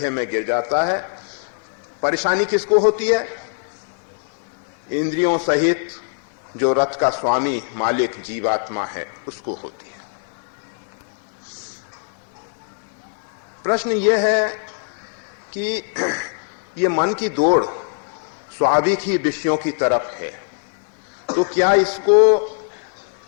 में गिर जाता है। परेशानी किसको होती है? इंद्रियों सहित जो रथ का स्वामी मालिक जीवात्मा है उसको होती है। प्रश्न यह है कि ये मन की दौड़ स्वाभाविक ही विषयों की तरफ है, तो क्या इसको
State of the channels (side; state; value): right; silent; 58 dB below the other